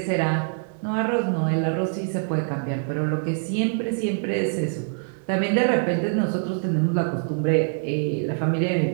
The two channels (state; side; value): silent; left; 62 dB below the other